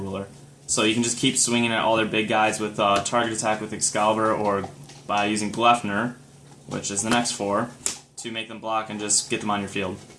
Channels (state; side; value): identical; both; correlation 1.00